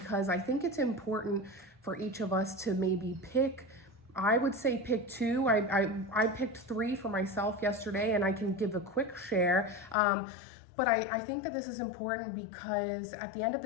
I think it's important for each of us to maybe pick. I would say pick 2. I picked 3 for myself yesterday, and I can give a quick share. But I think that this is important because at the end of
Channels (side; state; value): right; drops out; at 10.0 s